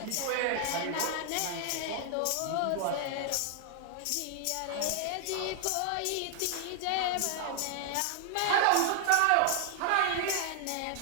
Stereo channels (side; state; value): both; different; correlation 0.00